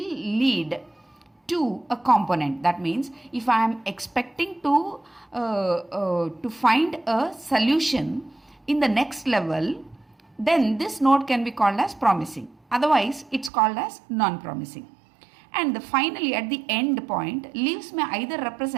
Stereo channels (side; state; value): left; drops out; at 13.5 s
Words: to a component. That means if I am expecting to find a solution in the next level, then this node can be called as promising. Otherwise, it's called as non-promising. And finally, at the end point, leaves may either